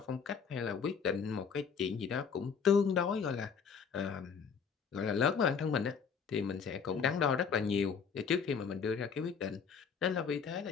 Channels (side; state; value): right; quieter; 6.3 dB